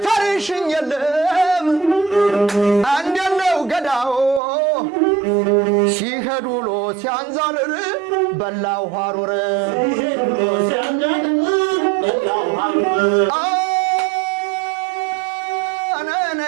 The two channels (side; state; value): left; drops out; at 4.4 s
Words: የለም አንደነው ገዳው ሲሄዱ ሎ ሲያንዛርር በላው ሐሩር